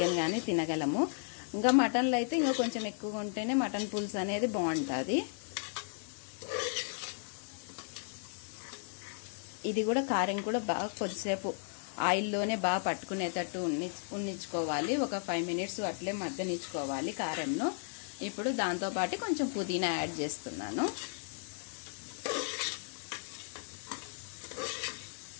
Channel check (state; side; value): silent; right; digital silence